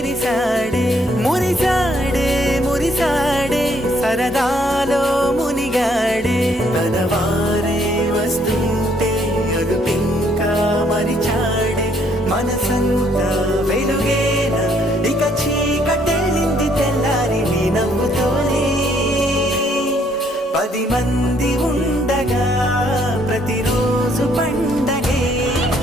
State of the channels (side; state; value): both; normal; correlation 0.67